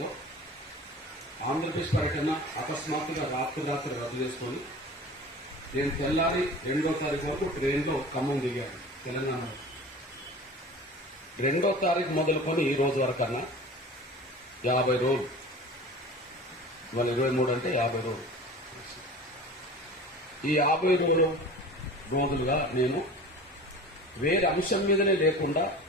ఆంధ్రప్రదేశ్ పర్యటన అకస్మాత్తుగా రాత్రి రద్దు చేసుకొని నేను తెల్లారి 2వ తారీఖు వరకు ట్రైన్లో ఖమ్మం దిగాను తెలంగాణలో. 2వ తారీఖు మొదలుకొని ఈ రోజు వరకన్నా 50 రోజులు, ఇవాళ 23 అంటే 50 రోజులు. ఈ 50 రోజులుగా నేను వేరే అంశం మీదనే లేకుండా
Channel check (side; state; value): both; normal; correlation 0.38